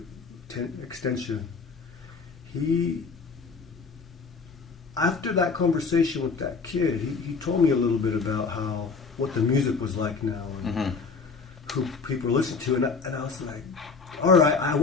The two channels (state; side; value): quieter; right; 4.8 dB